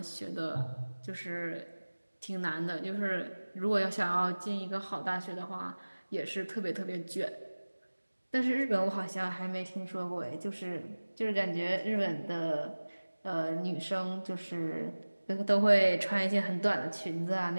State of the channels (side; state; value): both; inverted; correlation -1.00